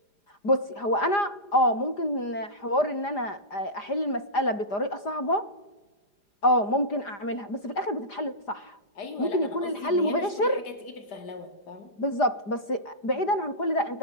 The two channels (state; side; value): late; right; 4.9 ms